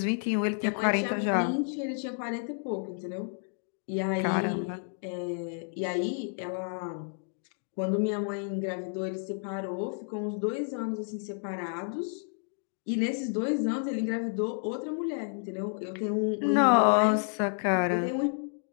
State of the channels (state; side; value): silent; right; 57 dB below the other